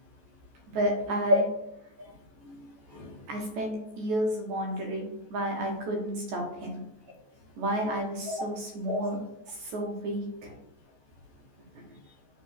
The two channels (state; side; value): late; left; 14 ms